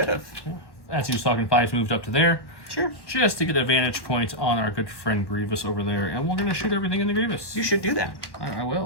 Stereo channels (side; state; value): right; late; 1.1 ms